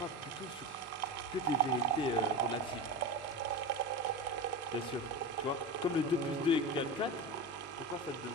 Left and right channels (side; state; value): both; normal; correlation 0.23